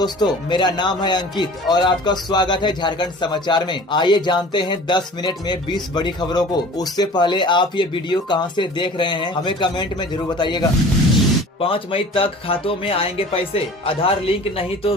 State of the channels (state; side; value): normal; both; correlation 0.43